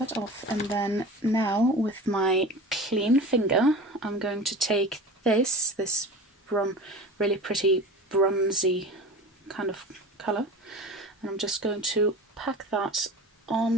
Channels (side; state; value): both; normal; correlation 0.35